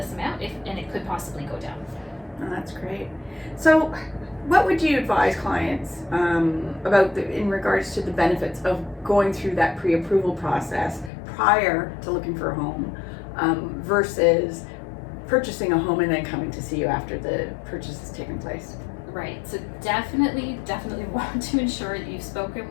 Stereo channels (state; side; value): drops out; right; at 11.1 s